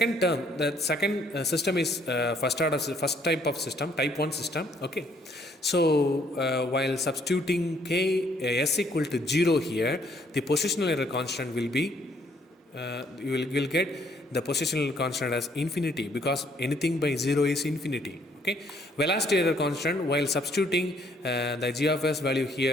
term, the second system is first type of system, type 1 system. Okay, so while substituting s equal to 0 here, the positional error constant will be you will get the positional constant as infinity, because anything by 0 is infinity. Okay, velocity error constant, while substituting the g of s value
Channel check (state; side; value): normal; both; correlation 0.65